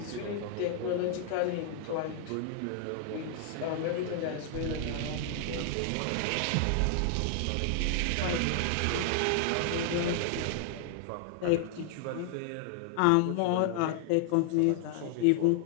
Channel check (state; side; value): different; both; correlation 0.00